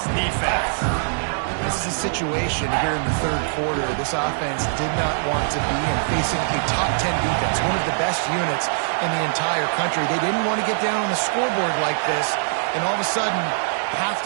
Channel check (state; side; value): silent; left; digital silence